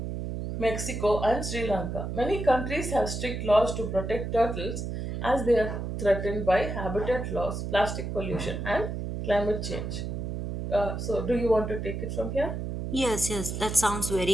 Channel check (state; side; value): noise; right; hum, 4 dB below the sound